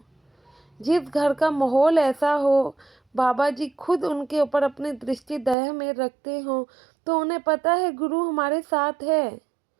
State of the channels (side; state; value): left; drops out; at 5.6 s